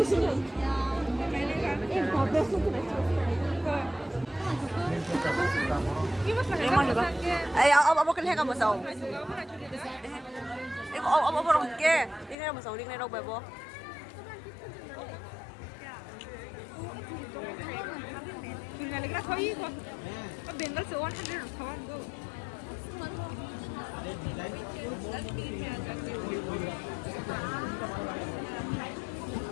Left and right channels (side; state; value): right; drops out; at 12.4 s